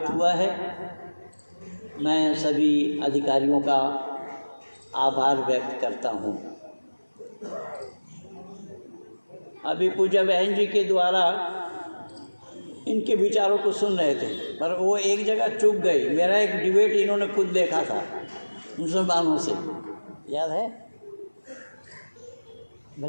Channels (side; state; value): both; inverted; correlation -1.00